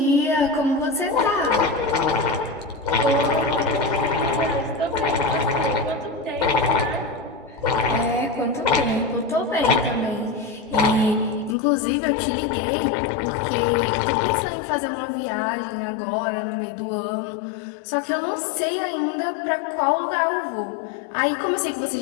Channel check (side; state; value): right; drops out; at 11.6 s